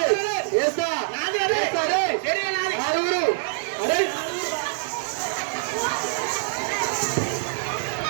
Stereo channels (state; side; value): silent; left; 59 dB below the other